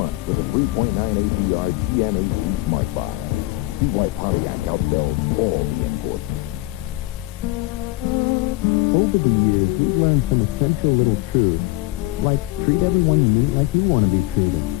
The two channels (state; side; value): quieter; right; 19.4 dB